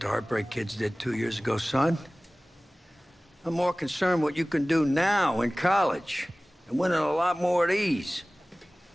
Heartbreak Kids did 2 years ago, son. I'm more concerned what you can do now in college and winning a lot more of these.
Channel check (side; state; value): both; normal; correlation 0.98